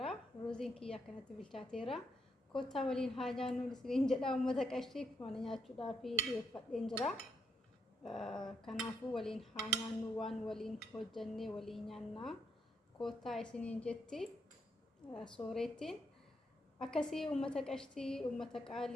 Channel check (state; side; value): normal; both; correlation 0.78